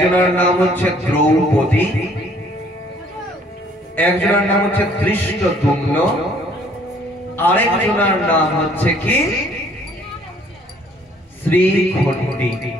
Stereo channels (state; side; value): normal; both; correlation 0.60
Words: নাম হচ্ছে দ্রৌপদী, একজনের নাম হচ্ছে ধৃষ্টদ্যুম্ন, আরেকজনের নাম হচ্ছে কি শ্রীখণ্ডী।